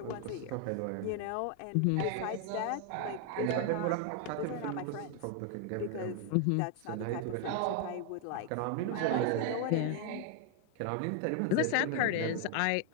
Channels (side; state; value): both; different; correlation 0.01